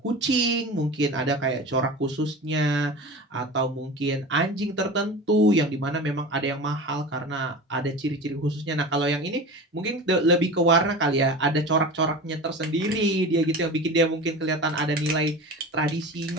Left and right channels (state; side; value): normal; both; correlation 0.32